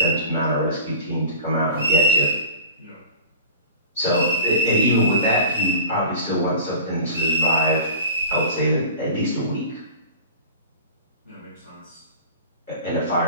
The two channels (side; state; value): both; inverted; correlation -0.38